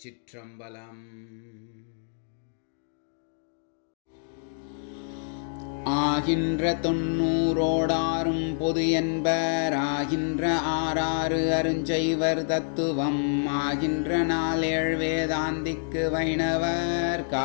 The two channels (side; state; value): right; silent; digital silence